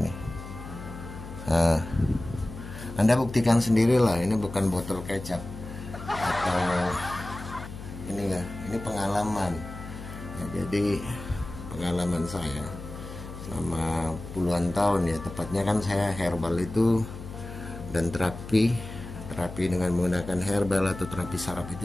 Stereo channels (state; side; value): noise; left; hum, 11 dB below the sound